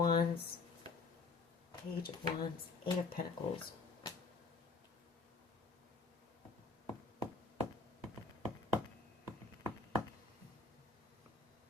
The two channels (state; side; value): quieter; right; 4.1 dB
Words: Page of Wands, Eight of Pentacles.